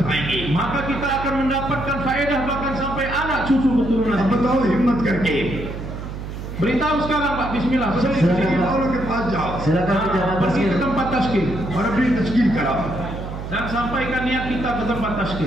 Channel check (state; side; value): noise; right; hum, 8 dB below the sound